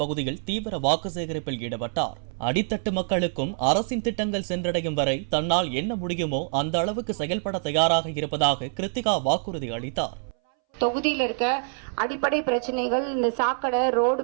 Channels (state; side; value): silent; left; 61 dB below the other